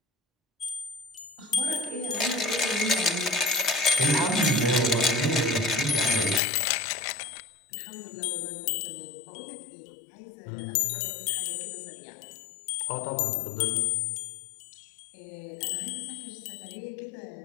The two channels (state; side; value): drops out; right; at 6.4 s